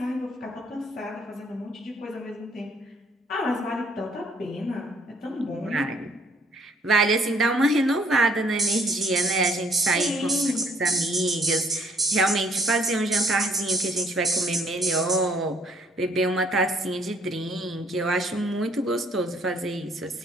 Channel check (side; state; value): both; normal; correlation 0.62